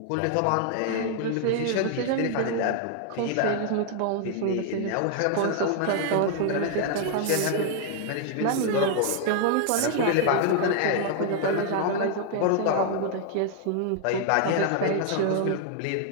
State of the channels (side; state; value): both; different; correlation 0.00